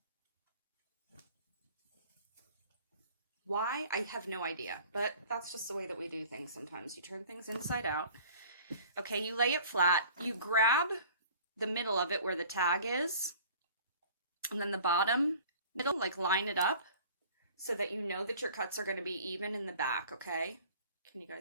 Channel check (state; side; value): inverted; both; correlation -0.47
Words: Why? I have no idea, but that's just the way that we do things sometimes. You turn things inside out. Okay, you lay it flat. You grab the middle of it where the tag is, and then the bottom middle, like line it up so that you know that your cuts are going to be even in the back, okay? Can you